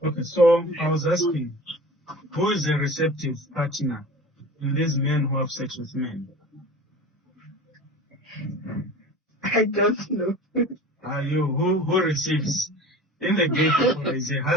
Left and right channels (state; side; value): normal; both; correlation 0.38